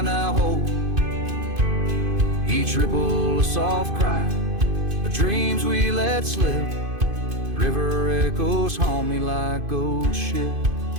now hold. Each ripple a soft cry, the dreams we let slip. River echoes haunt me like old ship.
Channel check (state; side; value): late; left; 2.5 ms